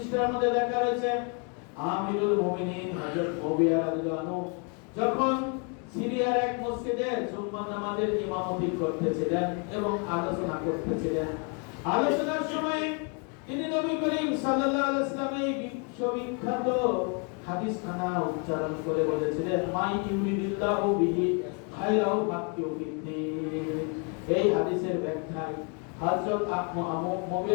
মধ্যে লেখা রয়েছে, আমিরুল মুমিনিন হযরত মুবিয়া রাদিয়াল্লাহু আনহু যখন সিরিয়ার এক মসজিদে জুম্মা নামাজের ইমামতি করতেছিলেন এবং আলোচনা করতেছিলেন, আলোচনার সময় তিনি নবী করিম সাল্লাল্লাহু আলাইহি ওয়াসাল্লামের বিশ্ববিখ্যাত হাদিসখানা উচ্চারণ করে বলেছিলেন, মাই ইউরিদিল্লাহু বিহি খায়রাও ফাতু বিদ্দিন। এই হাদিসের ব্যাখ্যায় হযরত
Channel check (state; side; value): quieter; right; 36.4 dB